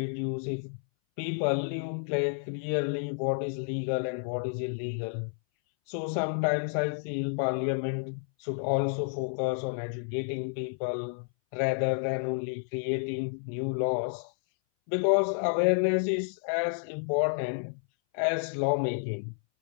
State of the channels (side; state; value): right; silent; 58 dB below the other